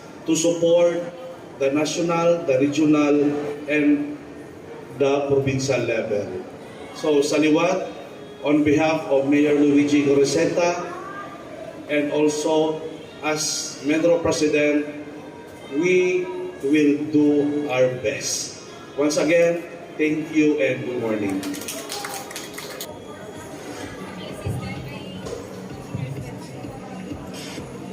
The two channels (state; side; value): identical; both; correlation 1.00